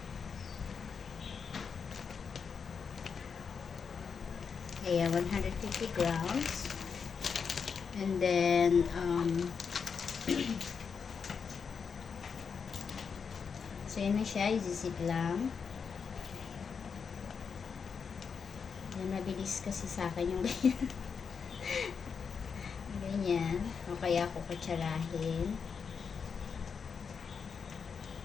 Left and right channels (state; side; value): quieter; right; 6.1 dB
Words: Ayan, 150 grams. And then, so yun na siya, isisip lang. Yan, mabilis kasi sa akin yung ganyan. Ganyan. O kaya ako kutsarahin.